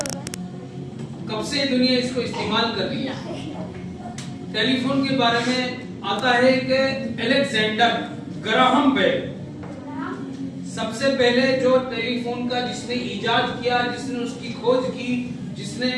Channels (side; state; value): both; identical; correlation 1.00